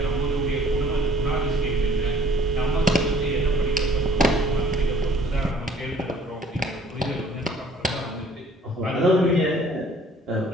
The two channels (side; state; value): both; normal; correlation 0.57